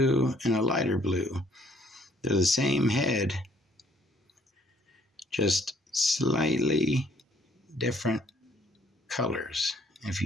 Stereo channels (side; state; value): both; normal; correlation 0.62